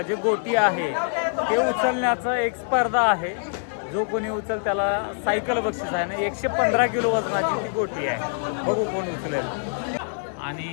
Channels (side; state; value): right; silent; digital silence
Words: जे गोटी आहे ते उचलण्याचं एक स्पर्धा आहे. जो कोणी उचल त्याला सायकल बक्षीस आहे ना. 115 किलो वजनाची ती गोटी आहे. बघू कोण उचलेल. आणि